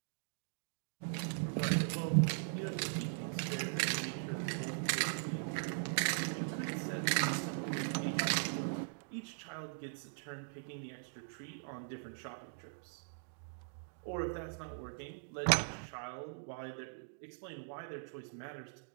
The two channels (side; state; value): left; silent; digital silence